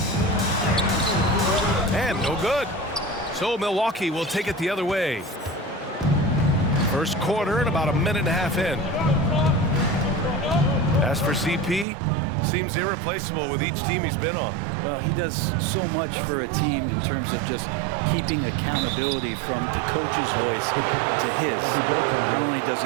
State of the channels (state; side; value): drops out; left; at 11.9 s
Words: And no good. So Milwaukee will take it the other way. First quarter and about a minute and a half in. As for CP, seems irreplaceable with each team he's been on. Well, he does so much for a team in terms of just keeping accountability from the coach's voice to his. Not only does